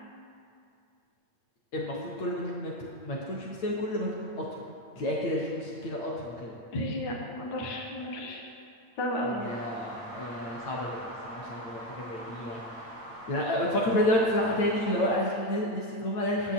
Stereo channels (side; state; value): right; late; 8.8 ms